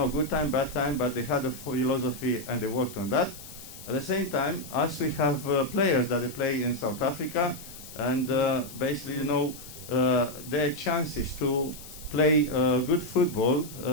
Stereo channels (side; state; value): left; noise; hiss, 15 dB below the sound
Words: time, bad time, but they had a philosophy and they worked on that. At the same time, us, we have players that they play in South Africa, and basically, their chances to play good football,